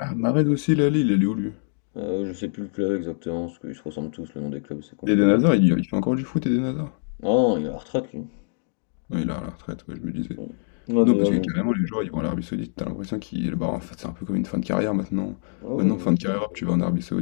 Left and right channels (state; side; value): silent; right; digital silence